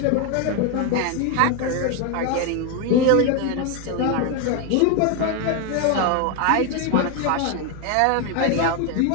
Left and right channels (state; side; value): different; both; correlation 0.01